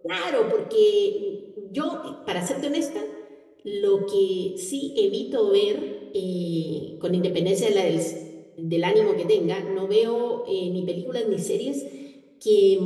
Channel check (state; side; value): identical; both; correlation 1.00